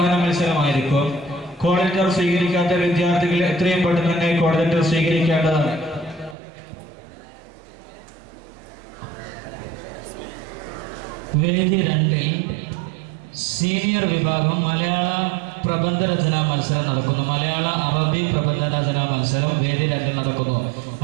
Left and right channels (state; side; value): drops out; left; at 6.4 s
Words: മത്സരമായിരിക്കും. കോൾ ലെറ്റർ സ്വീകരിക്കാത്ത വിദ്യാർത്ഥികൾ എത്രയും പെട്ടെന്ന് തന്നെ കോൾ ലെറ്റർ സ്വീകരിക്കേണ്ടതാണ്. വേദി 2 സീനിയർ വിഭാഗം മലയാള പ്രബന്ധ രചനാ മത്സരം നടക്കുന്നു. മലയാള അറബി പ്രബന്ധ രചനാ മത്സരം വേദി 2 നടക്കുന്നു.